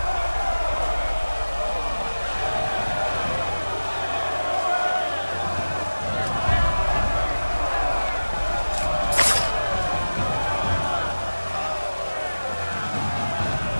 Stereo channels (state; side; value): inverted; both; correlation -1.00